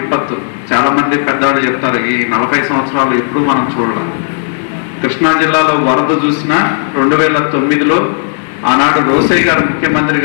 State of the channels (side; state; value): right; silent; digital silence